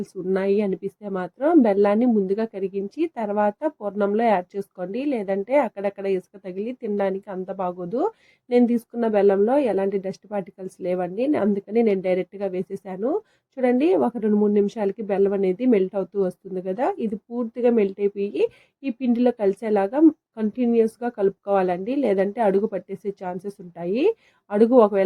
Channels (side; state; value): both; identical; correlation 1.00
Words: ఉన్నాయి అనిపిస్తే మాత్రం బెల్లాన్ని ముందుగా కరిగించి తర్వాత పూర్ణంలో యాడ్ చేసుకోండి. లేదంటే అక్కడక్కడ ఇసుక తగిలి తినడానికి అంత బాగోదు. నేను తీసుకున్న బెల్లంలో ఎలాంటి డస్ట్ పార్టికల్స్ లేవండి, అందుకని నేను డైరెక్ట్గా వేసేసాను. చూడండి, ఒక 2-3 నిమిషాలకి బెల్లం అనేది మెల్ట్ అవుతూ వస్తుంది కదా. ఇది పూర్తిగా మెల్ట్ అయిపోయి ఈ పిండిలో కలిసేలాగా కంటిన్యూస్గా కలుపుకోవాలండి, లేదంటే అడుగు పట్టేసే ఛాన్సెస్ ఉంటాయి. అడుగు